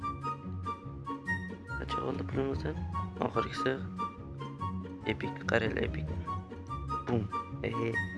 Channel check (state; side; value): identical; both; correlation 1.00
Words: Qancha oldi pulimizdan? Oxirgisi epik, qaranglar epik. Bum.